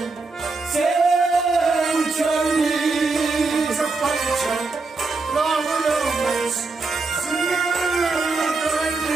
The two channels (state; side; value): quieter; left; 3.9 dB